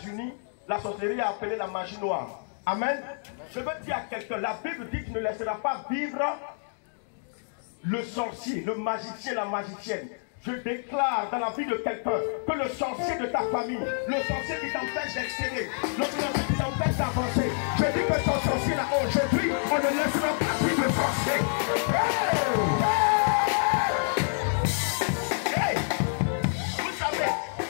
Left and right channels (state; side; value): silent; right; digital silence